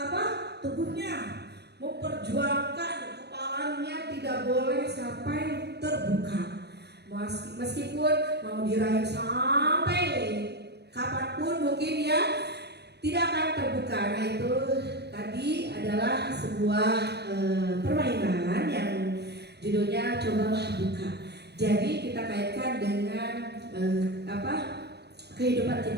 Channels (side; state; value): left; late; 0.48 ms